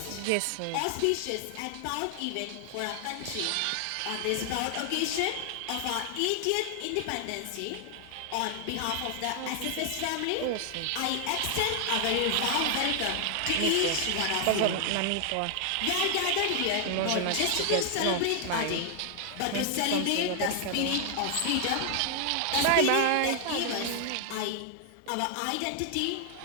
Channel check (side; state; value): both; different; correlation 0.00